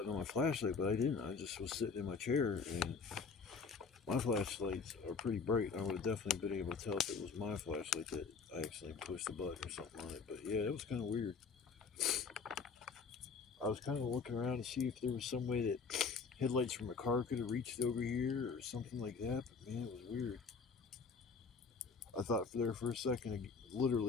on my flashlight, but I didn't. I just was sitting in my chair, and my flashlights are pretty bright. I would have definitely been able to tell if it was my flashlight that I accidentally pushed the button or something on it. But yeah, it was kind of weird. I was kind of looking around to see if there was some way that headlights from a car could have reached over here or something like that. But man, it was weird. I thought for a second,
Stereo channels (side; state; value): right; quieter; 5.1 dB